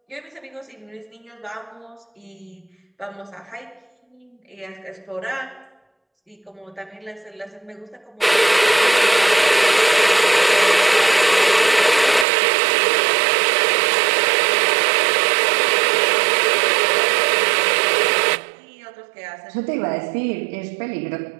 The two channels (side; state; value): left; drops out; at 12.2 s